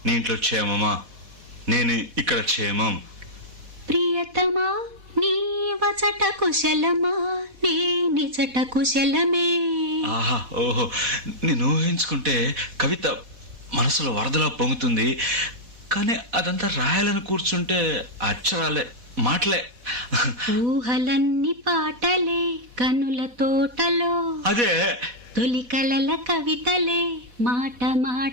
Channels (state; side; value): late; left; 4.1 ms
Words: నీ ఇంట్లో క్షేమమా, నేను ఇక్కడ క్షేమం. ప్రియతమా నీ వచట కుశలమా, నీ నిజట కుశలమే. ఆహా, ఓహో, నేను ఊహించుకుంటే కవిత మనసులో వరదలా పొంగుతుంది, కానీ అదంతా రాయాలని కూర్చుంటే అక్షరాలే, మాటలే. ఊహలన్నీ పాటలే కనుల తోటలో, అదే తొలి కలల కవితలే మాట